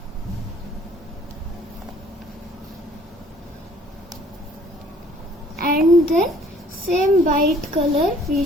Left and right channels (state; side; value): normal; both; correlation 0.57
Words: And then same white color we